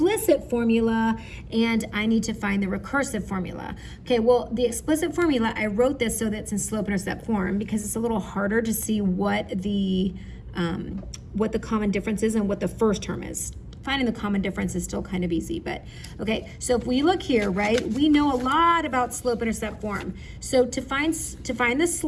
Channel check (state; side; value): identical; both; correlation 1.00